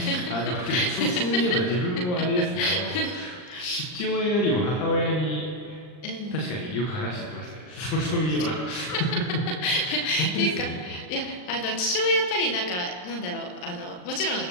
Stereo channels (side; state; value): right; late; 39 ms